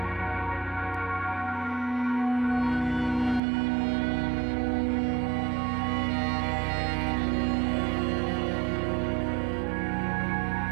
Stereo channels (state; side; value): drops out; left; at 3.4 s